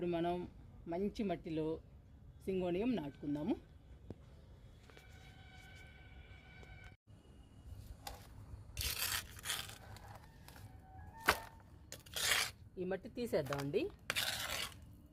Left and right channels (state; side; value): identical; both; correlation 1.00